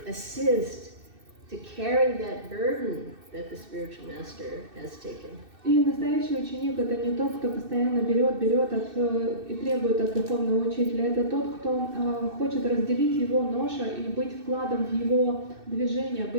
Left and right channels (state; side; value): late; left; 2.6 ms